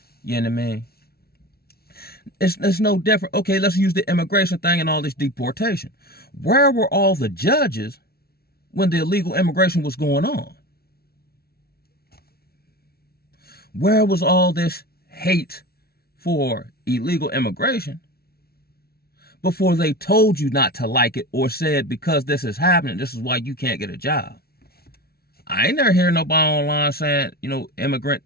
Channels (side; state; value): right; late; 0.45 ms